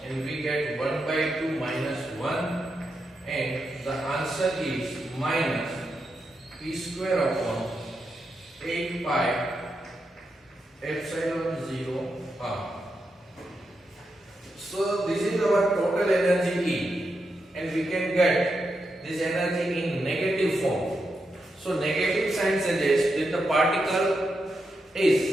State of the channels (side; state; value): both; normal; correlation 0.85